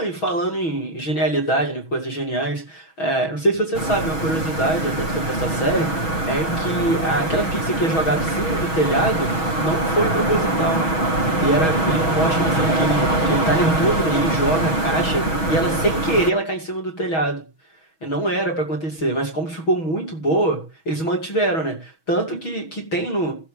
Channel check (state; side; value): late; right; 6.2 ms